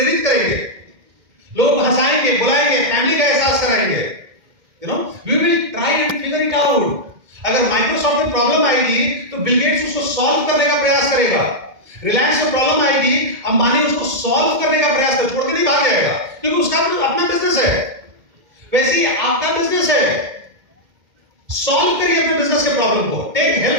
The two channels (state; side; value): late; left; 2.1 ms